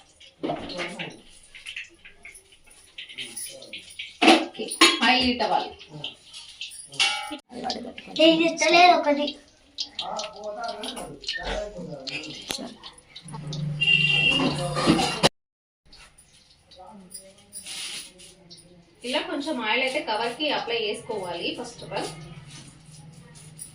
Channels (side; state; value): both; identical; correlation 1.00